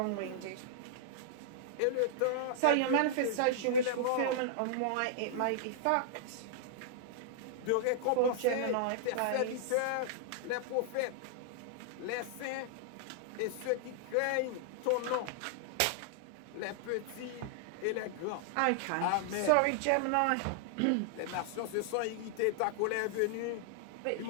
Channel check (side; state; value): both; different; correlation -0.01